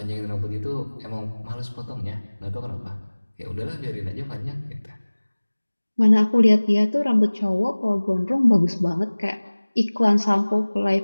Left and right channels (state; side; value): inverted; both; correlation -1.00